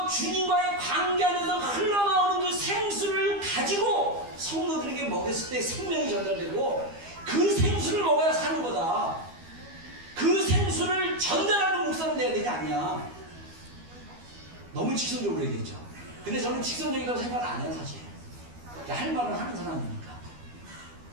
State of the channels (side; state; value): left; late; 12 ms